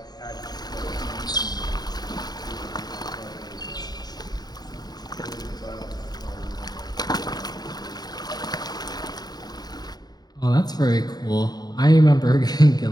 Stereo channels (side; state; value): right; late; 0.20 ms